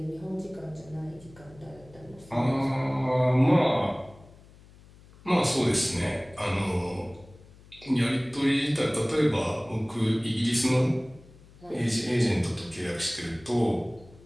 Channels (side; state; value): left; noise; hum, 23 dB below the sound